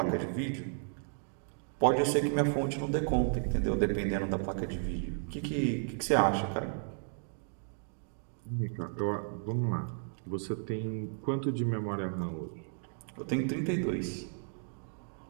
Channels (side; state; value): left; silent; digital silence